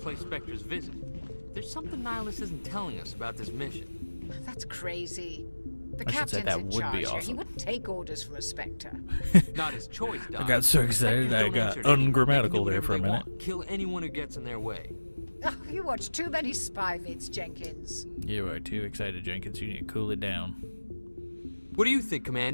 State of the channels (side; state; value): both; inverted; correlation -1.00